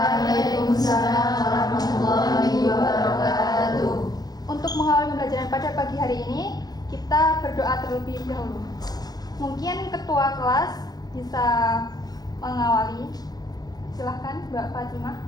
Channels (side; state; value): right; late; 0.19 ms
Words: warahmatullahi wabarakatuh. Untuk mengawali pembelajaran pada pagi hari ini, kita berdoa terlebih dahulu. Mungkin ketua kelas bisa mengawali. Silahkan Mbak Fatimah.